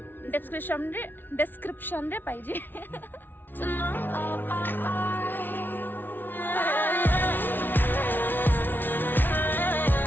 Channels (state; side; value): late; right; 0.094 ms